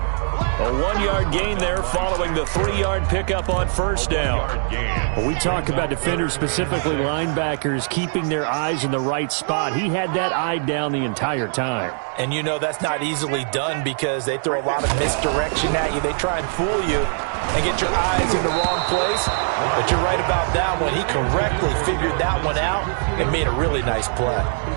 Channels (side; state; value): left; silent; 63 dB below the other